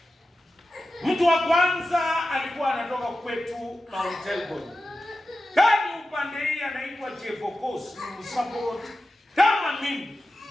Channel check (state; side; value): normal; both; correlation 0.93